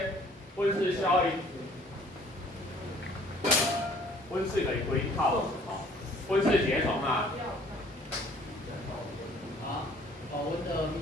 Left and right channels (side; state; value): both; normal; correlation 0.56